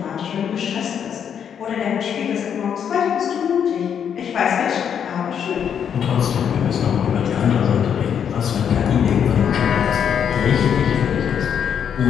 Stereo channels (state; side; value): quieter; right; 8.1 dB